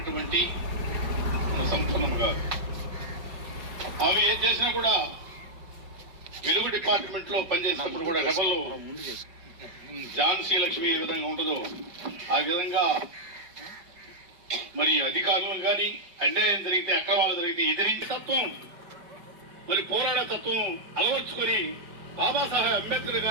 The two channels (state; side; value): late; left; 5.2 ms